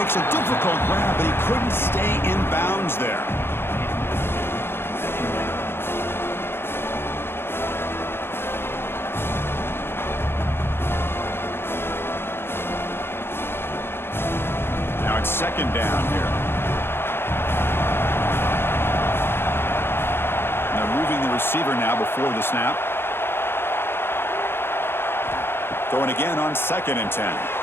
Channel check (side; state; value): right; late; 0.11 ms